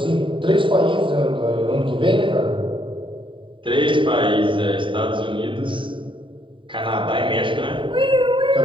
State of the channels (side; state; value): left; late; 0.24 ms